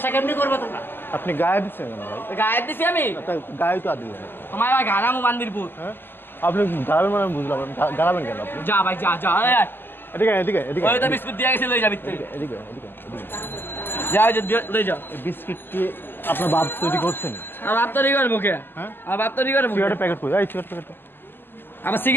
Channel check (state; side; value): late; right; 0.097 ms